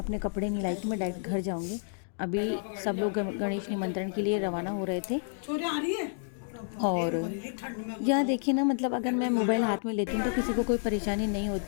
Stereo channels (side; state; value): right; silent; digital silence